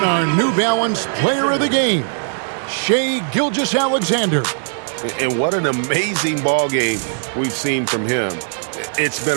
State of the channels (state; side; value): silent; left; digital silence